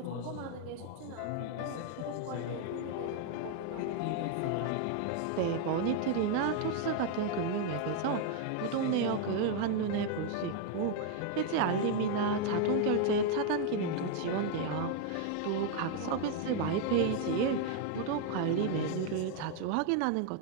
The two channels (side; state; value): both; different; correlation 0.00